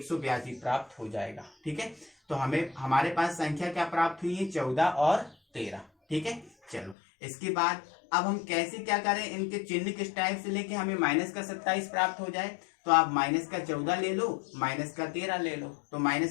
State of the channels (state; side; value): drops out; right; at 7.0 s